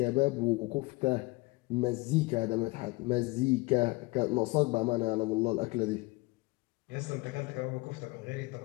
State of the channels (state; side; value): quieter; right; 23.6 dB